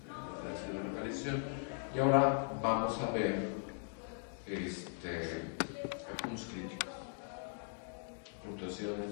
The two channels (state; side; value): silent; right; 52 dB below the other